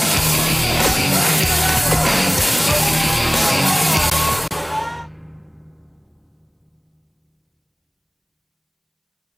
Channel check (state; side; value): identical; both; correlation 1.00